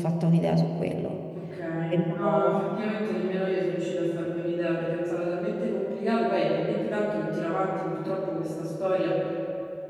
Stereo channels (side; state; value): both; identical; correlation 1.00